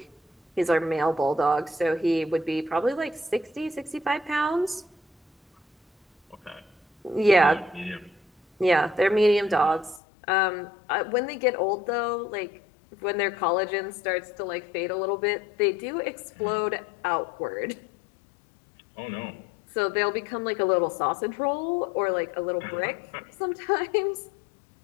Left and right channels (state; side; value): drops out; right; at 10.0 s